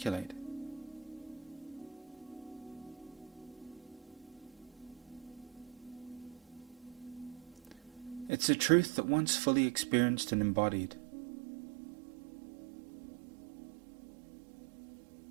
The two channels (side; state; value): left; drops out; at 8.3 s